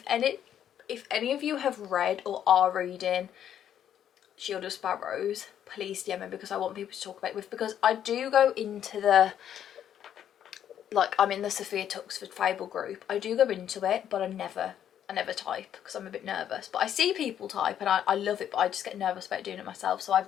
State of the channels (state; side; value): quieter; right; 9.9 dB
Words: any of you have read or are reading Shield of Sparrows, please DM me because I want people to talk about it with, because I do go into the, like I'm in the Sophia Tuxford Fable group, I do go into it, but I never type because I'm a bit nervous. But I see people type and I love it, but I just get nervous about doing it myself, so